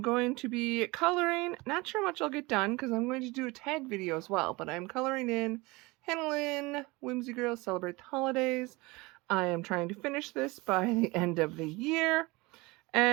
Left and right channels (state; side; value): quieter; left; 23.6 dB